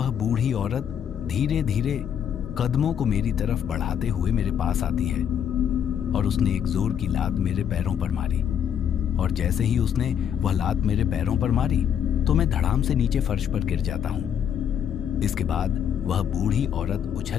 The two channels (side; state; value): right; quieter; 8.8 dB